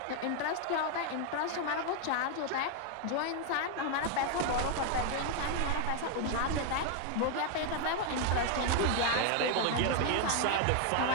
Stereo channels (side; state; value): both; different; correlation 0.00